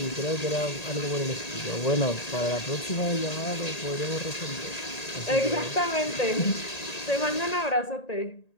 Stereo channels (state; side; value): late; right; 1.8 ms